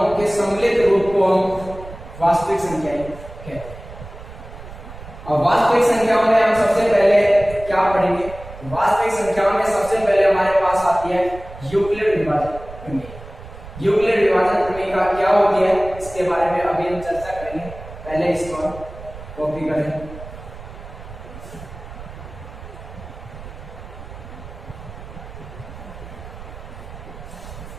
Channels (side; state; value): right; noise; rumble, 14 dB below the sound